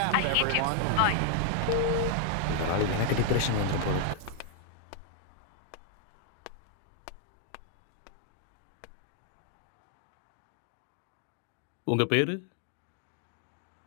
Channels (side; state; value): both; different; correlation 0.00